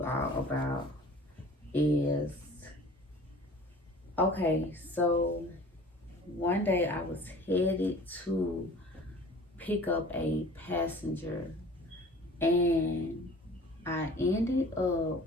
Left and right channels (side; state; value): both; normal; correlation 0.45